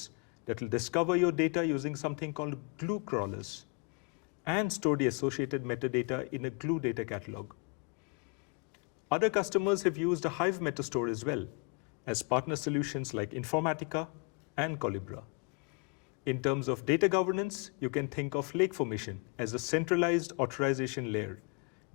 that will discover your data using something called Glue crawlers and store the associated metadata in a Glue data catalog. Other customers have used a Hive metastore as well as partner solutions like Informatica and Collibra. In terms of data governance, you can think of Lakeformation as a centralized authorization layer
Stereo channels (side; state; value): right; quieter; 34.2 dB